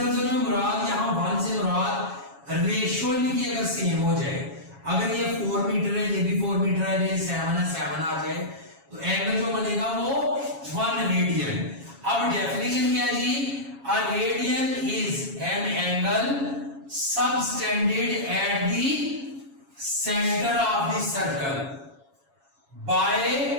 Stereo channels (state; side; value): late; left; 7.3 ms